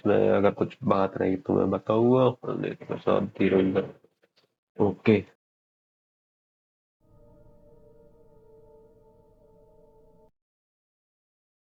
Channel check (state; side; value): identical; both; correlation 1.00